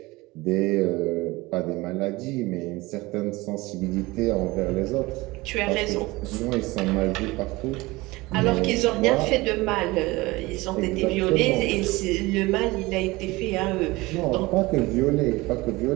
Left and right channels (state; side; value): quieter; left; 21.4 dB